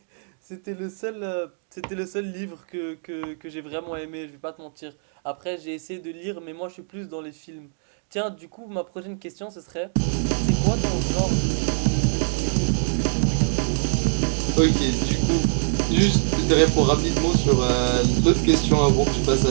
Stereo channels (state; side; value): silent; left; digital silence